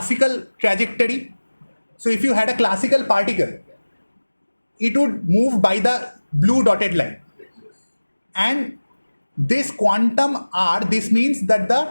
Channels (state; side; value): inverted; both; correlation -1.00